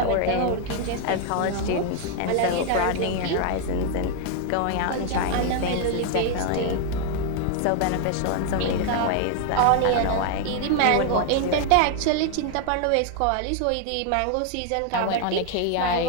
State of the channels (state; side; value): different; both; correlation 0.00